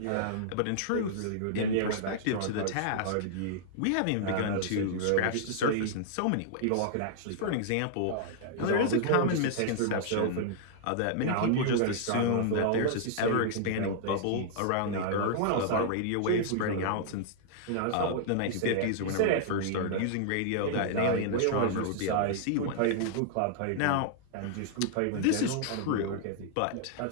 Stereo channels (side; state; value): both; different; correlation -0.01